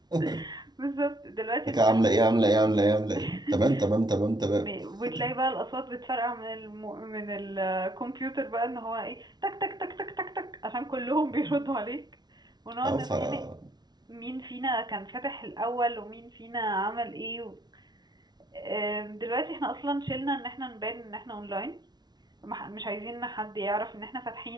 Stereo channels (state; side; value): late; left; 0.20 ms